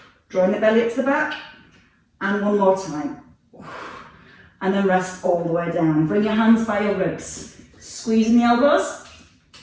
Drawing the belly up to the back, and 1 more time. And then rest all the way down. Bring your hands by your ribs. Squeezing the elbows.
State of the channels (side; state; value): both; identical; correlation 1.00